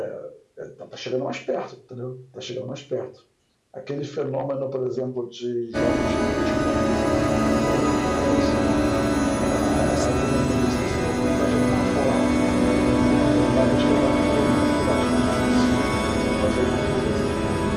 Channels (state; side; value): identical; both; correlation 1.00